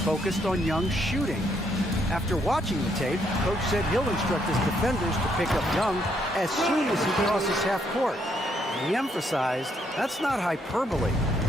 on Young's shooting. After watching the tape, coach said he'll instruct his defenders to pick up Young as soon as he crosses half court. And he emphasized that's not hyperbole.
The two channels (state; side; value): normal; both; correlation 0.73